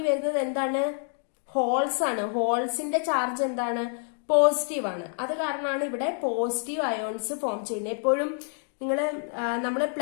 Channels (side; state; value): right; silent; 60 dB below the other